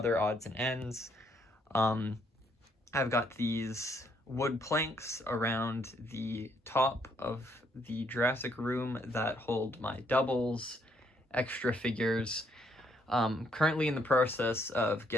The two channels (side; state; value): both; normal; correlation 0.71